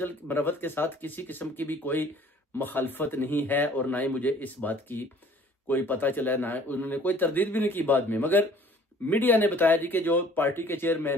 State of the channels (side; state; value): both; normal; correlation 0.53